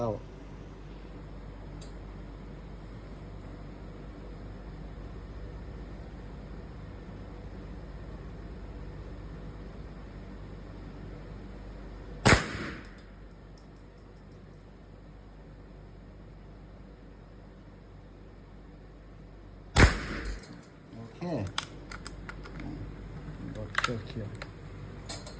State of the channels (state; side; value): identical; both; correlation 1.00